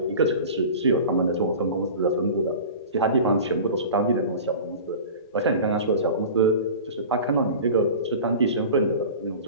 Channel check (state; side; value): inverted; both; correlation -0.36